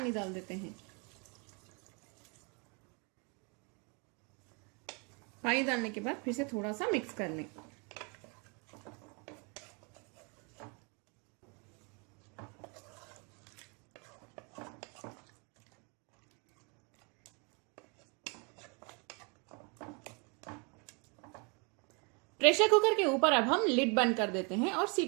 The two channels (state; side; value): quieter; left; 33.5 dB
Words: डाल देते हैं। पानी डालने के बाद फिर से थोड़ा सा मिक्स कर लें। प्रेशर कुकर के ऊपर अब हम लिड बंद कर देते हैं और